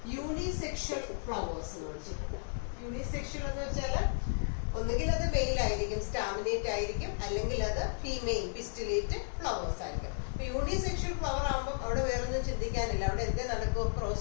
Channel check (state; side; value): silent; right; digital silence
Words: യൂണിസെക്ഷൽ ഫ്ലവേഴ്സ് എന്ന് വിളിച്ചിട്ടുണ്ട്. യൂണിസെക്ഷൽ എന്ന് വെച്ചാൽ ഒന്നുകിൽ അത് മെയിൽ ആയിരിക്കും, സ്റ്റാമിനേറ്റ് ആയിരിക്കും, അല്ലെങ്കിൽ അത് ഫീമെയിൽ പിസ്റ്റിലേറ്റ് ഫ്ലവേഴ്സ് ആയിരിക്കും. അപ്പൊ യൂണിസെക്ഷൽ ഫ്ലവർ ആകുമ്പോൾ അവിടെ വേറൊന്നും ചിന്തിക്കാനില്ല, അവിടെ എന്തേ നടക്കും?